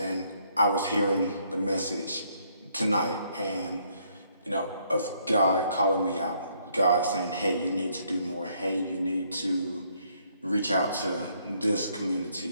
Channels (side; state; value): both; inverted; correlation -0.69